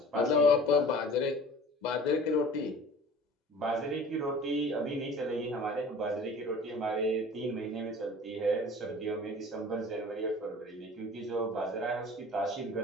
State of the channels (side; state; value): both; normal; correlation 0.43